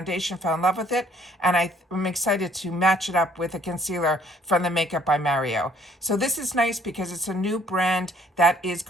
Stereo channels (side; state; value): both; normal; correlation 0.61